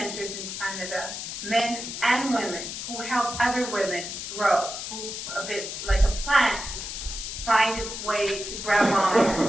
in Canada, men and women, who help other women grow, who, a bit like a plant, find its way to grab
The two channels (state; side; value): noise; left; hiss, 7 dB below the sound